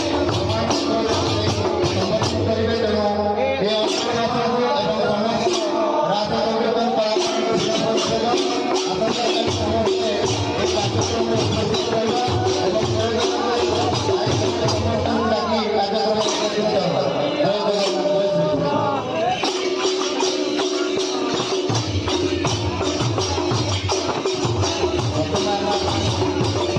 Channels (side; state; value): both; identical; correlation 1.00